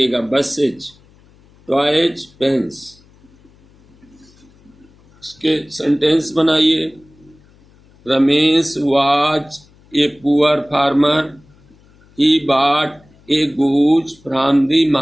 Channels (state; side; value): noise; left; hum, 29 dB below the sound